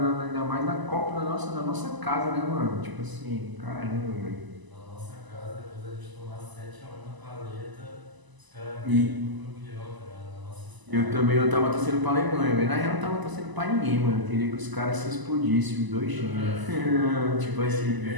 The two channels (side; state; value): left; late; 1.0 ms